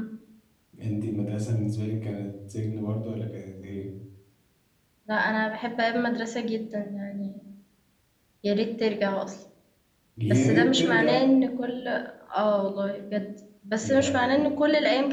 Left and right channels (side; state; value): both; identical; correlation 1.00